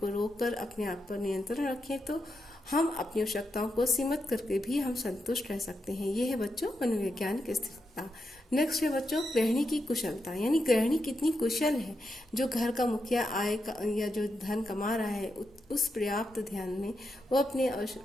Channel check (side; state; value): both; normal; correlation 0.85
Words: रोककर अपने आप पर नियंत्रण रखें तो हम अपनी आवश्यकताओं को सीमित करके भी हम संतुष्ट रह सकते हैं। ये है बच्चों मनोवैज्ञानिक स्थिरता। नेक्स्ट है बच्चों गृहिणी की कुशलता, यानी गृहिणी कितनी कुशल है। जो घर का मुखिया आय का या जो धन कमा रहा है उस पर्याप्त ध्यान में वो अपने